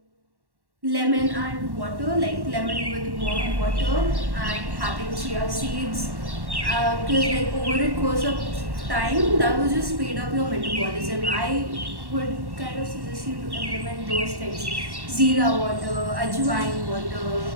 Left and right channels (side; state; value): left; late; 1.1 ms